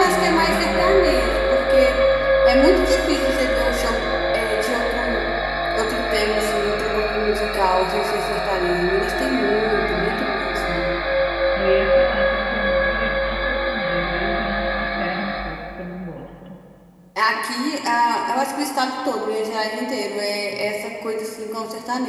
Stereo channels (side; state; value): both; identical; correlation 1.00